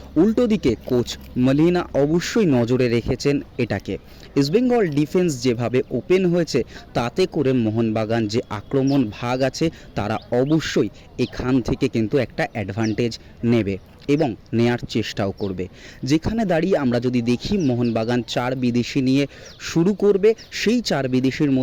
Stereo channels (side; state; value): both; identical; correlation 1.00